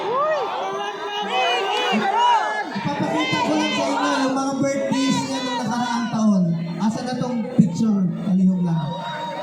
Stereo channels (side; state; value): both; identical; correlation 1.00